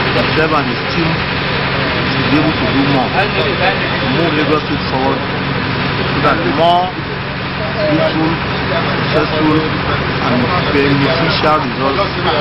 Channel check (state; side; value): identical; both; correlation 1.00